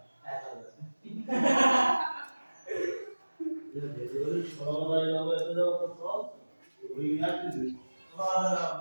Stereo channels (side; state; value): both; inverted; correlation -1.00